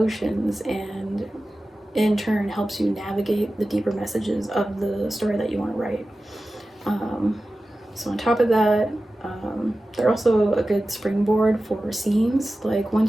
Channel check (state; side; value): normal; both; correlation 0.95